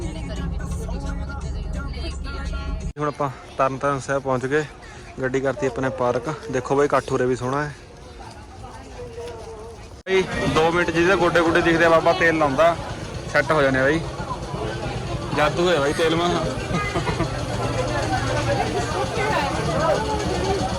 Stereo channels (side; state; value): both; identical; correlation 1.00